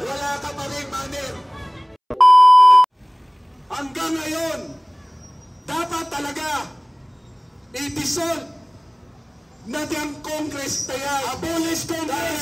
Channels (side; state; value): both; identical; correlation 1.00